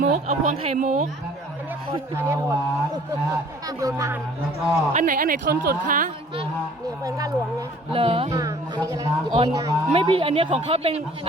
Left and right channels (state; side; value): normal; both; correlation 0.53